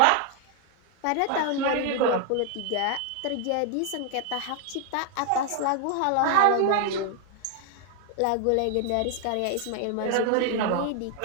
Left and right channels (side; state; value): both; different; correlation 0.00